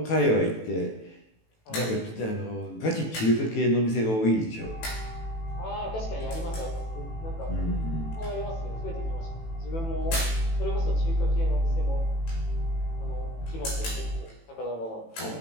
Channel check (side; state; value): right; late; 18 ms